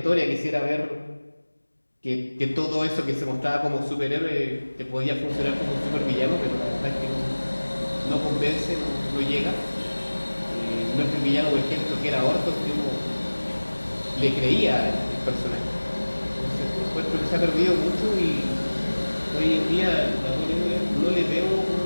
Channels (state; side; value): inverted; both; correlation -1.00